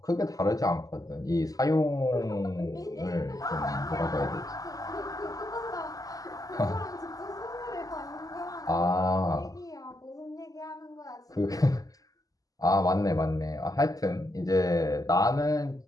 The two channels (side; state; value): right; late; 0.17 ms